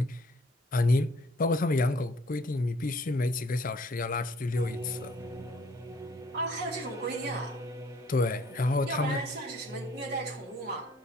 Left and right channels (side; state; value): both; normal; correlation 0.60